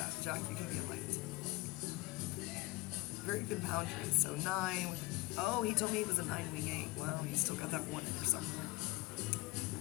Jack, you can be enlightened. Very good boundaries. So 9, oh, he told me he was a 9, wing 8. Well, he's still got that 1 in there somewhere.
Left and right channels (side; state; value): right; quieter; 21.4 dB